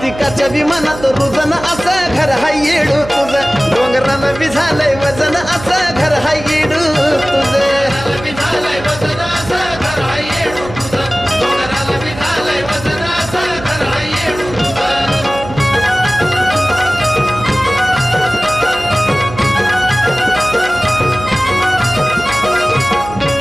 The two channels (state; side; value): noise; right; hum, 13 dB below the sound